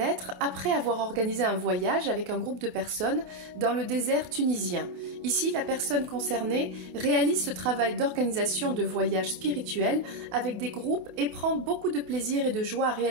après avoir organisé un voyage avec un groupe de personnes dans le désert tunisien. Ici, la personne concernée réalise ce travail d'organisation de voyage spirituel avec des groupes et prend beaucoup de plaisir et de joie à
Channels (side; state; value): left; late; 28 ms